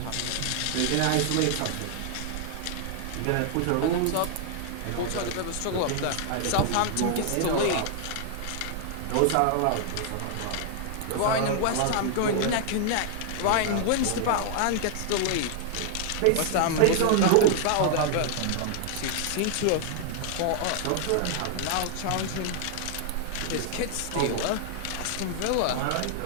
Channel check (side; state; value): both; different; correlation -0.01